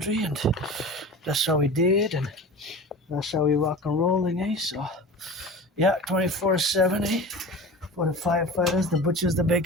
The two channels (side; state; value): both; normal; correlation 0.35